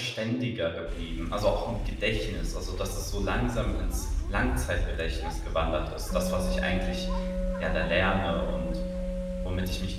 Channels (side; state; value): both; identical; correlation 1.00